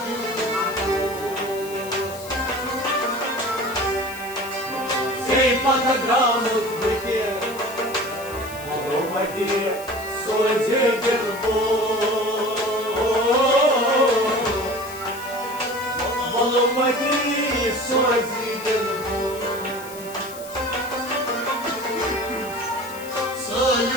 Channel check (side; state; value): left; noise; hiss, 16 dB below the sound